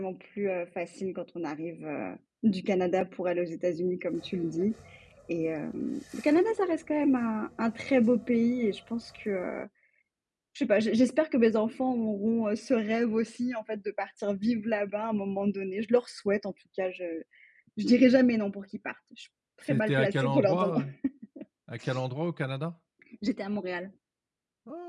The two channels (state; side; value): identical; both; correlation 1.00